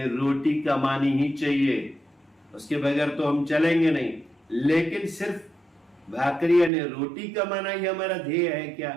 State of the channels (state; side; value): drops out; left; at 6.7 s